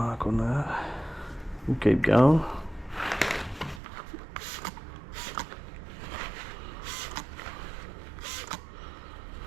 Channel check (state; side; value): drops out; left; at 3.8 s